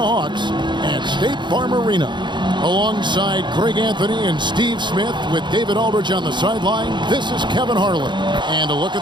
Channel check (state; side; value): late; left; 0.22 ms